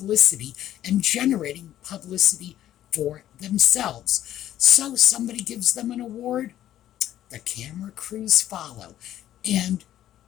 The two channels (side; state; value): right; quieter; 12.3 dB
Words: and generating publicity for themselves. So somebody gives them an award, the camera crews follow, and